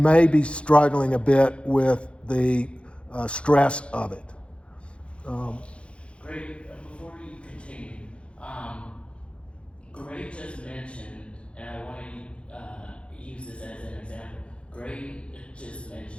be struggling a bit with the stress of it. Great. Before you continue, Gray just mentioned, and I want to use this as an example. Gray just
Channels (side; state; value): right; late; 0.059 ms